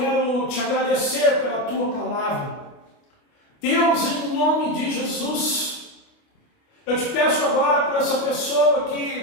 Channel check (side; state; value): right; late; 29 ms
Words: te agradecer pela tua palavra. Deus, em nome de Jesus, eu te peço agora por essa pessoa